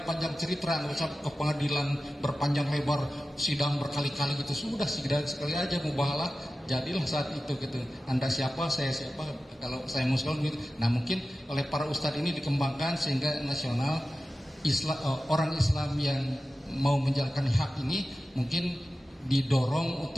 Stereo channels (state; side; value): normal; both; correlation 0.94